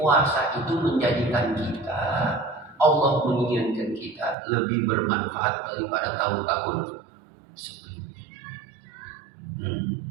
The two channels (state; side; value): drops out; left; at 4.4 s